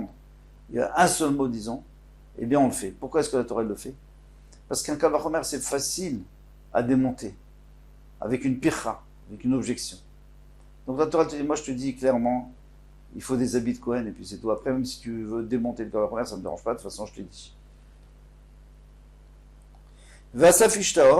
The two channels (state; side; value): identical; both; correlation 1.00